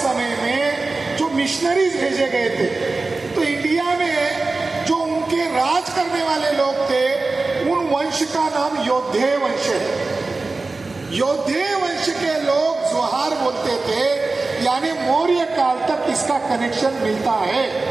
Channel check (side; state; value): left; quieter; 3.6 dB